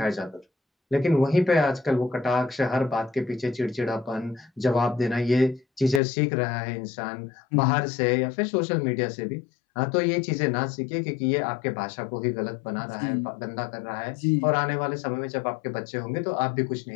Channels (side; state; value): right; drops out; at 6.0 s